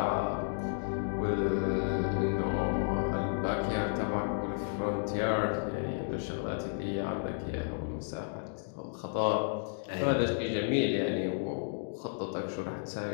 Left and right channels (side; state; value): right; silent; digital silence